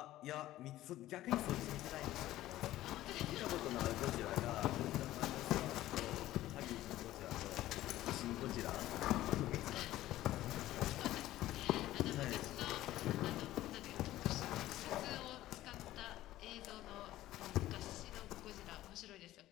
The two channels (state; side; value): quieter; right; 15.0 dB